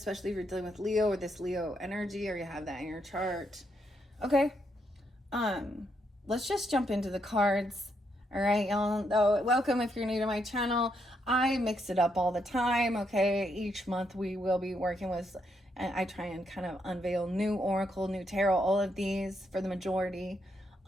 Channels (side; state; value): both; normal; correlation 0.78